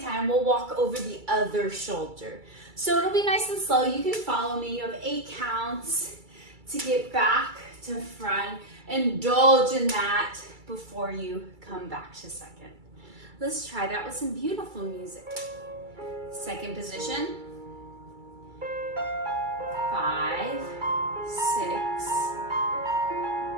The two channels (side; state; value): left; late; 2.3 ms